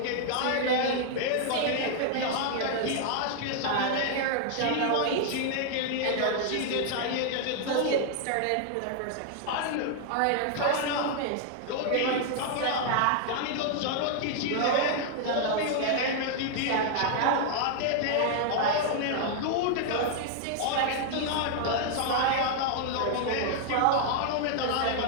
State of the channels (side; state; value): both; different; correlation 0.00